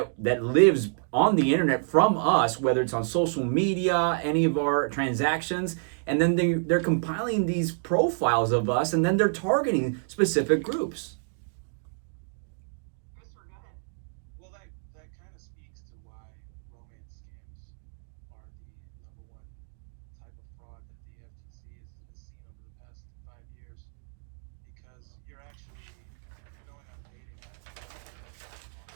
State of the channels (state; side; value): silent; left; digital silence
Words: lives on the internet from us, whether it's on social media, any of our transactions, and then they're compiling these profiles of us, and then they're targeting specific groups. Christopher, go ahead. Well, that kind of speaks to why romance scams are the number one type of fraud that the FTC has seen over the past 5 years. Because you're going on a dating app.